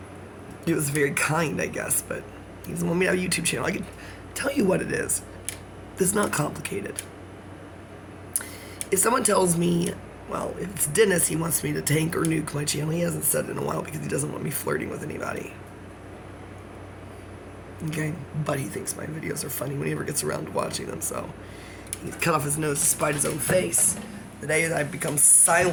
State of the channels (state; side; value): identical; both; correlation 1.00